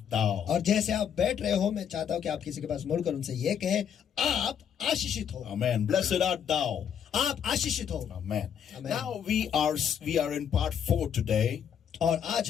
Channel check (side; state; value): right; quieter; 8.3 dB